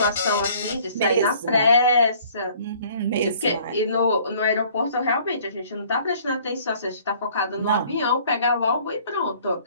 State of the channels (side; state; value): both; inverted; correlation -0.55